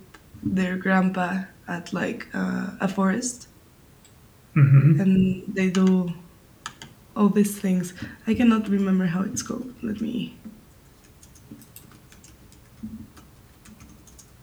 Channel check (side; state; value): both; identical; correlation 1.00